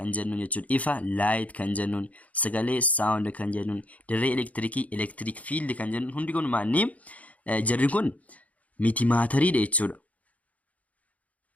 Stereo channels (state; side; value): late; right; 0.070 ms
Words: jennuun jechuudha. Ifa light kan jennuun, sagalee sound kan jennuun, dirree elektirikii electric field kan jennuun hundi kun maanni jarri kun miti maatariidha jechuudha.